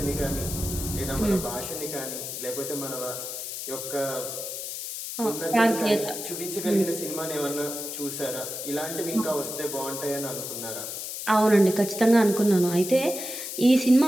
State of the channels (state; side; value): noise; left; hiss, 6 dB below the sound